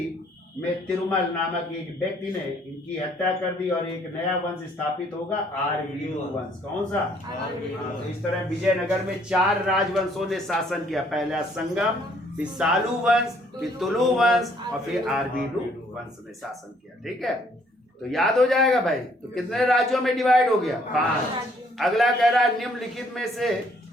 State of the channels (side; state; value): both; normal; correlation 0.64